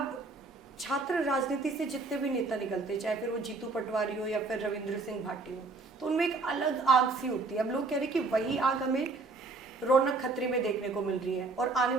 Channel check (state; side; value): quieter; left; 3.6 dB